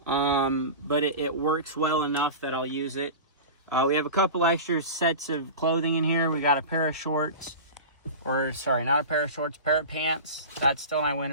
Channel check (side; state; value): both; inverted; correlation -0.31